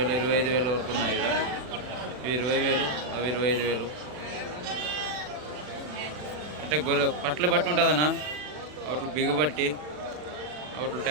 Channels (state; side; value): late; left; 40 ms